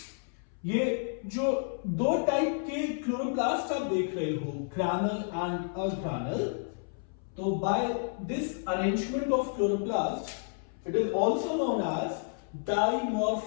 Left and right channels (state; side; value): silent; right; 57 dB below the other